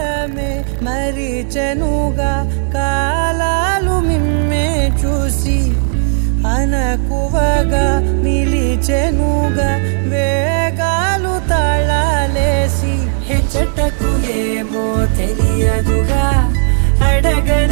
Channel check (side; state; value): left; silent; digital silence